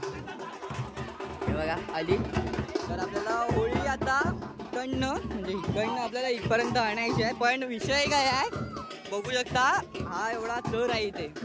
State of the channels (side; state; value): both; identical; correlation 1.00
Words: हे बघा आली तर आपल्याला होळी आता इकडनं म्हणजे इकडनं आपल्याला इथपर्यंत आणायची आहे पण विषय काय आहे बघू शकता हा एवढा चर आहे इथे